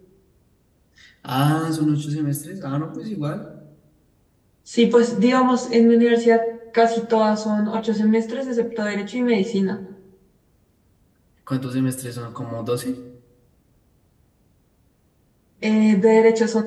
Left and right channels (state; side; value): identical; both; correlation 1.00